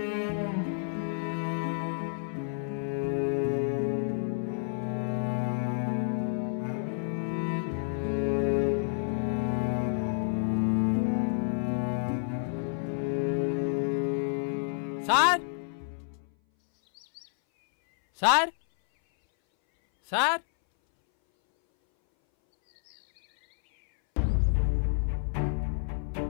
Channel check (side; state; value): right; silent; 58 dB below the other